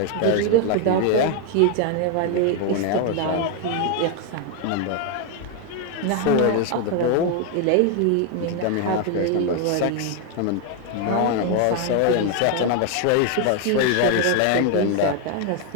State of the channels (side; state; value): both; different; correlation 0.01